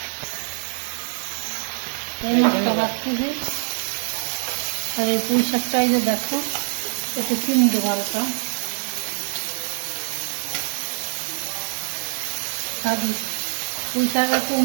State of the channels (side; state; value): left; silent; 62 dB below the other